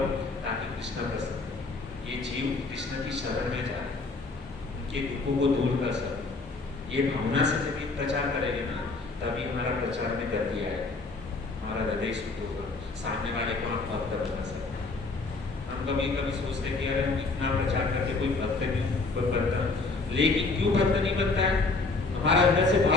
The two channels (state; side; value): quieter; right; 3.7 dB